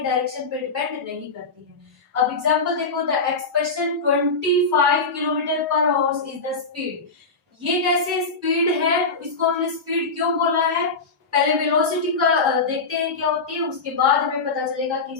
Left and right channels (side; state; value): right; quieter; 4.0 dB